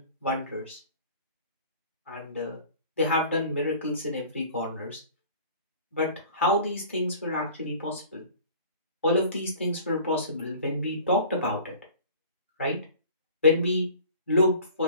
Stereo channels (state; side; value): inverted; both; correlation -0.46